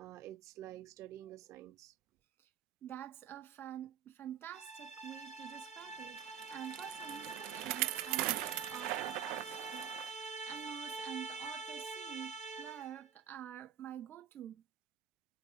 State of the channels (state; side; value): quieter; left; 8.9 dB